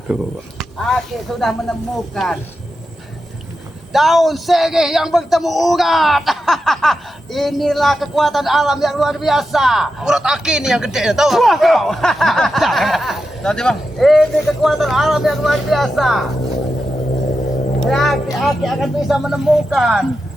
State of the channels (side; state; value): both; normal; correlation 0.89